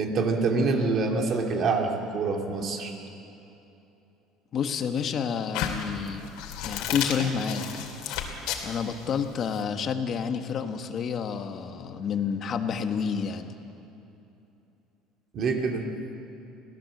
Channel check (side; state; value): both; normal; correlation 0.54